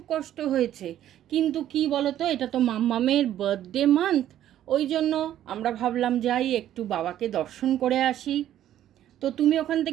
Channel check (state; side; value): quieter; left; 11.8 dB